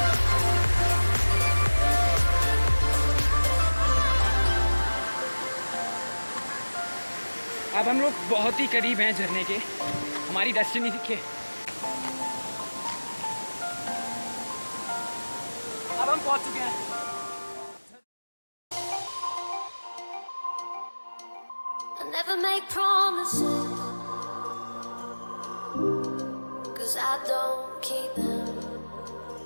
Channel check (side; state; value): both; inverted; correlation -1.00